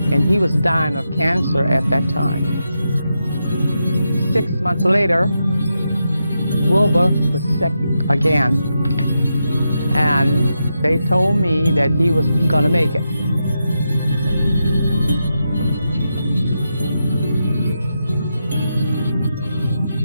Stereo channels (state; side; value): inverted; both; correlation -0.86